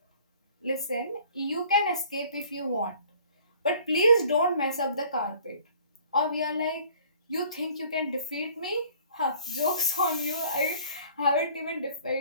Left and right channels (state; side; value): inverted; both; correlation -0.53